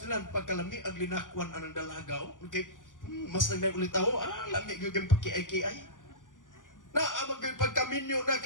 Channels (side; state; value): right; late; 0.88 ms